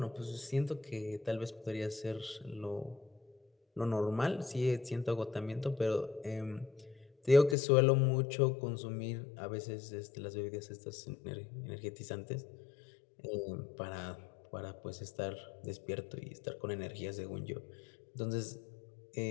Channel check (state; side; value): drops out; right; at 7.6 s